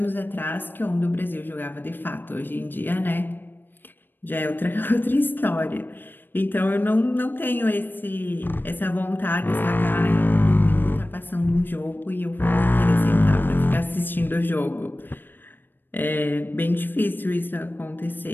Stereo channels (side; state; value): right; late; 0.094 ms